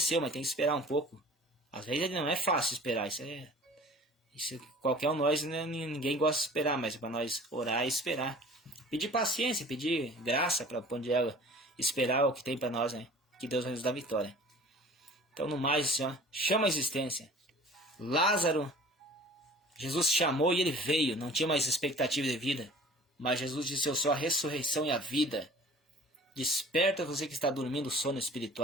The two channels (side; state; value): both; normal; correlation 0.46